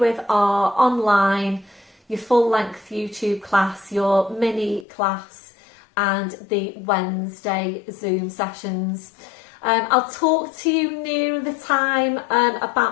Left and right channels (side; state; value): right; drops out; at 4.9 s